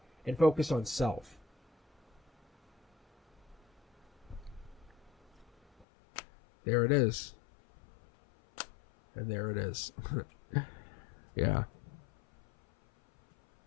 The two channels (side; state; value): right; drops out; at 5.9 s